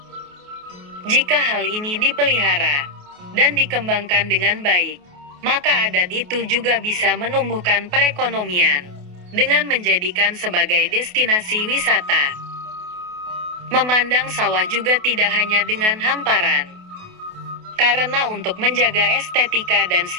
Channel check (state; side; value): late; left; 28 ms